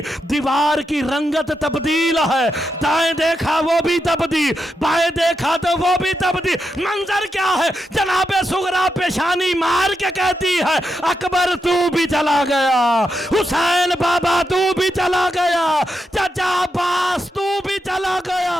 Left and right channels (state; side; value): normal; both; correlation 0.85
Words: دیوار کی رنگت تبدیل ہے، دائیں دیکھا وہ بھی تبدیل، بائیں دیکھا تو وہ بھی تبدیل۔ منظر کیا ہے؟ جناب سغرا پیشانی مار کے کہتی ہے اکبر تو بھی چلا گیا، حسین بابا تو بھی چلا گیا، چچا عباس تو بھی چلا گیا،